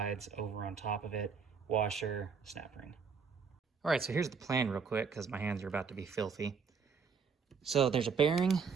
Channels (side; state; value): left; quieter; 5.7 dB